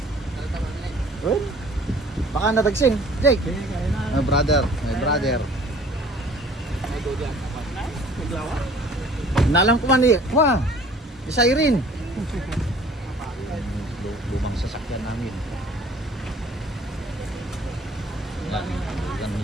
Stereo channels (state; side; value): normal; both; correlation 0.52